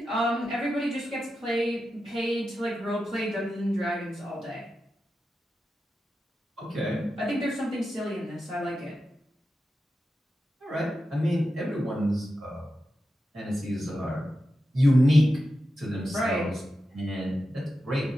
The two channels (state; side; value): normal; both; correlation 0.90